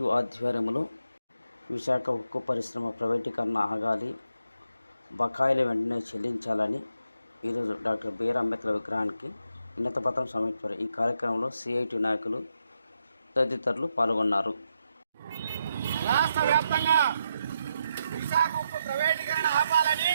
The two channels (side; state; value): both; inverted; correlation -0.82